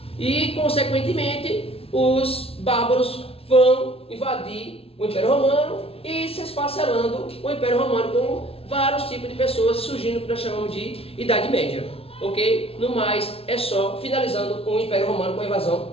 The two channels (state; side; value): late; right; 0.28 ms